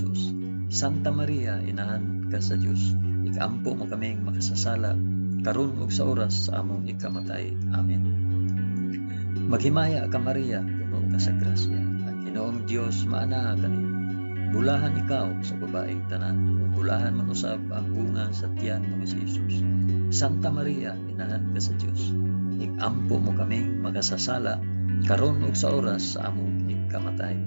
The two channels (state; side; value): inverted; both; correlation -1.00